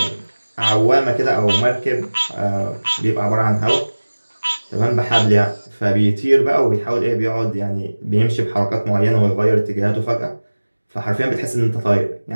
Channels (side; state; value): both; inverted; correlation -1.00